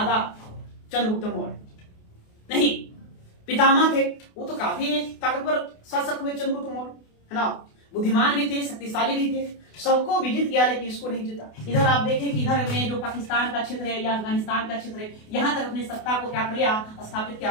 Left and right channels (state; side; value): late; right; 28 ms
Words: चंद्रगुप्त मौर्य नहीं पितामह थे, वो तो काफी ताकतवर शासक हुए चंद्रगुप्त मौर्य, है ना, बुद्धिमान भी थे, शक्तिशाली भी थे, सबको विजित किया, लेकिन इसको नहीं जीता। इधर आप देखें कि इधर में जो पाकिस्तान का क्षेत्र है या अफगानिस्तान का क्षेत्र है, यहां तक अपनी सत्ता को क्या कर लिया? स्थापित